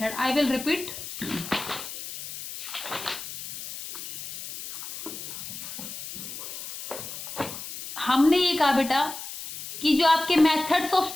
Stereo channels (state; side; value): noise; left; hiss, 9 dB below the sound